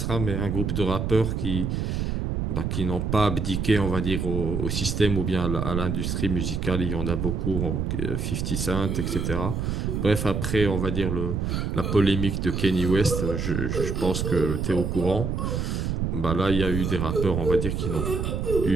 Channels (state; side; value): noise; right; rumble, 1 dB below the sound